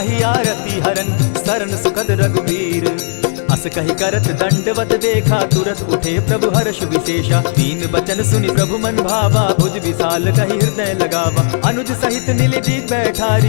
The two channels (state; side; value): silent; right; digital silence